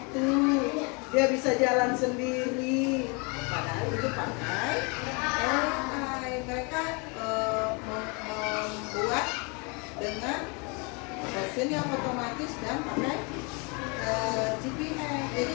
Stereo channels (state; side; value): quieter; right; 31.8 dB